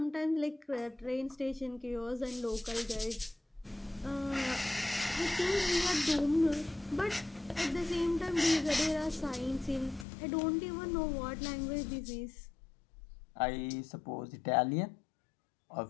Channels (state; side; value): drops out; right; at 10.1 s